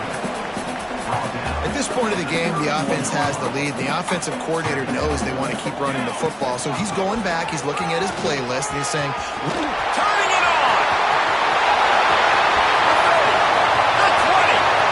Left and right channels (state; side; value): identical; both; correlation 1.00